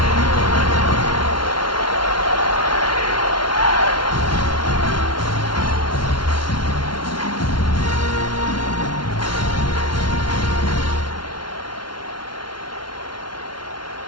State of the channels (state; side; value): late; right; 0.72 ms